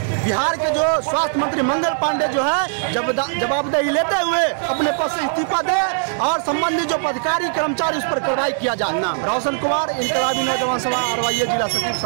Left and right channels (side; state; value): left; silent; digital silence